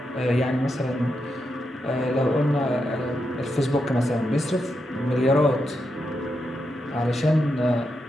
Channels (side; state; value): both; normal; correlation 0.85